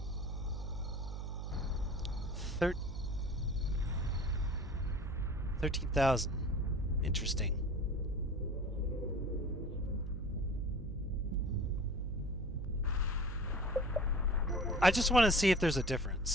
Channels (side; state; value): right; noise; hum, 4 dB below the sound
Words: Thir 13,000. Interesting. I just want to see if there's a